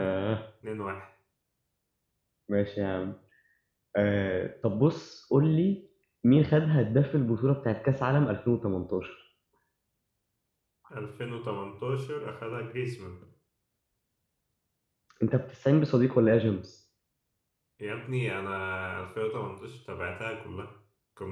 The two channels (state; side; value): identical; both; correlation 1.00